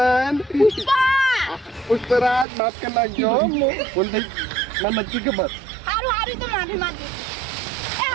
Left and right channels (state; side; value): drops out; left; at 2.5 s